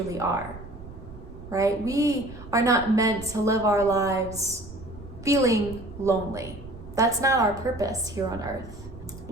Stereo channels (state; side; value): noise; right; rumble, 15 dB below the sound